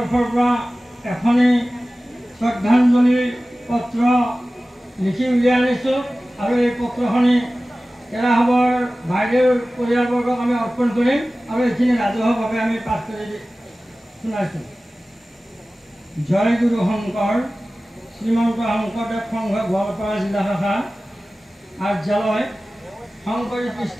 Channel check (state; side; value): normal; both; correlation 0.96